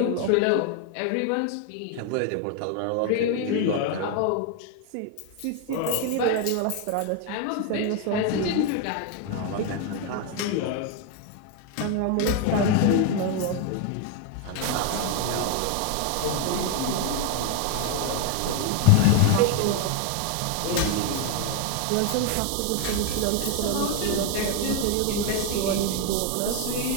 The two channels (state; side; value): different; both; correlation 0.01